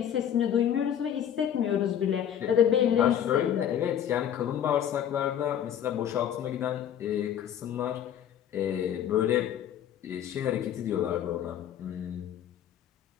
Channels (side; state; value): right; quieter; 9.8 dB